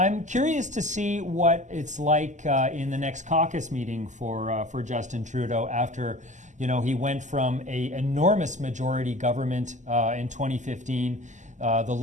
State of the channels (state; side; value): late; left; 0.35 ms